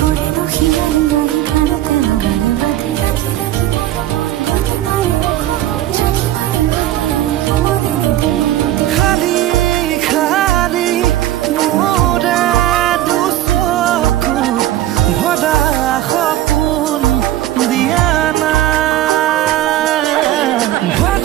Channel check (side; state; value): left; quieter; 13.8 dB